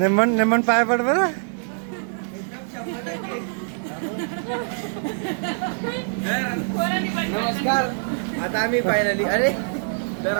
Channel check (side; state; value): left; silent; 63 dB below the other